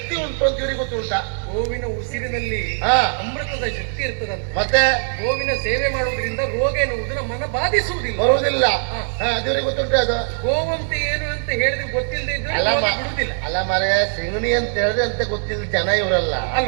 ಉಂಟು ಅಂತ ಇವರಿಗೆ ಗೊತ್ತುಂಟಾ? ಗೋವಿನ ಉಸಿರಿನಲ್ಲಿ ಅಮೃತದ ಶಕ್ತಿ ಇರ್ತದಂತೆ. ಮತ್ತೆ ಗೋವಿನ ಸೇವೆ ಮಾಡುವುದರಿಂದ ರೋಗ ಎನ್ನುವುದು ನಮ್ಮನ್ನ ಬಾಧಿಸುವುದಿಲ್ಲ, ಬರುವುದಿಲ್ಲ. ಅದಿವರಿಗೆ ಗೊತ್ತುಂಟು. ಅದು ಗೋವಂತ ಏನು ಅಂತ ಹೇಳಿದ್ರೆ ಗೊತ್ತಿಲ್ಲದೆ ಇದ್ರೆ ಬಿಡುವುದಿಲ್ಲ. ಅಲ್ಲ ಮರೆ ಸಿಂಗಣಿ ಅಂತ ಹೇಳಿದ್ರೆ ಅಂತ ಗೊತ್ತಿಲ್ಲ ಜನ ಇವರಲ್ಲ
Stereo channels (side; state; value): left; silent; 55 dB below the other